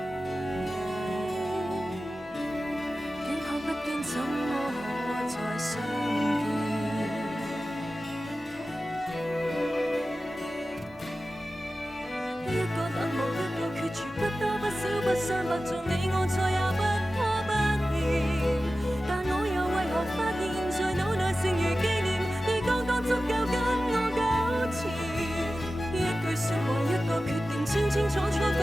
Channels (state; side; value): normal; both; correlation 0.94